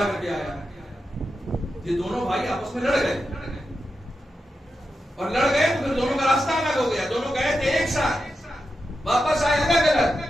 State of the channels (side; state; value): both; normal; correlation 0.88